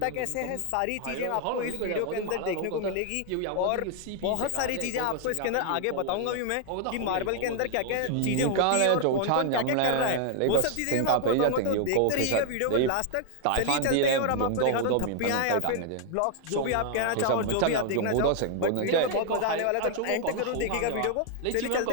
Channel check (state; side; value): different; both; correlation 0.00